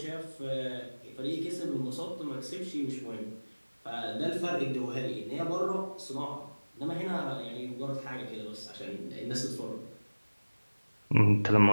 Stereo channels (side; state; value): both; inverted; correlation -1.00